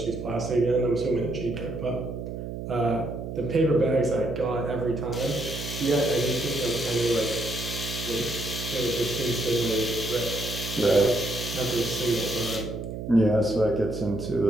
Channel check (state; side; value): noise; right; hum, 7 dB below the sound